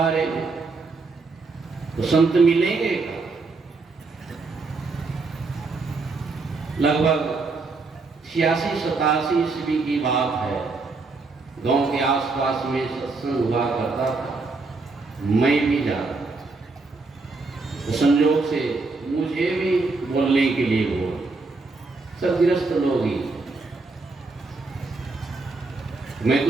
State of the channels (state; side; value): quieter; left; 3.9 dB